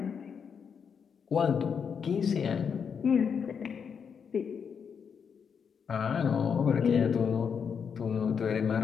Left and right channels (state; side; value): quieter; right; 6.7 dB